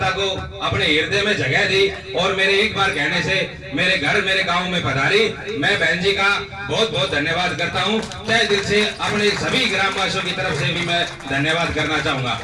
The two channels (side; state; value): both; identical; correlation 1.00